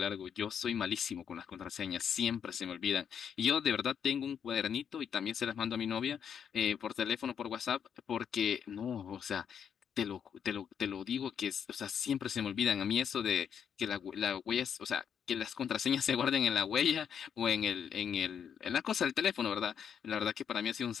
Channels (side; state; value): right; quieter; 7.9 dB